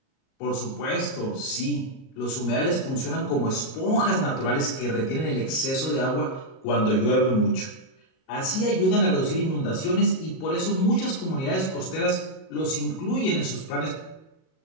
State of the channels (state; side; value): late; right; 38 ms